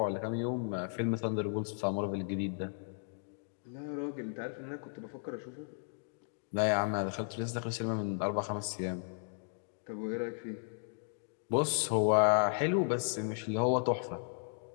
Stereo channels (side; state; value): right; silent; digital silence